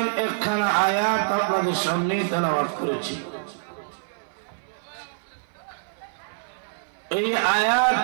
একখানা আয়াত আপনাদের সামনে তেলাওয়াত করেছি। এই আয়াত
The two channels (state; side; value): silent; left; 57 dB below the other